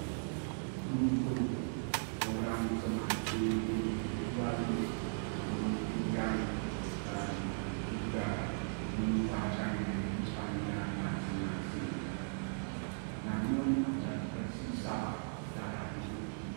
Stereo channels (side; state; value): left; silent; digital silence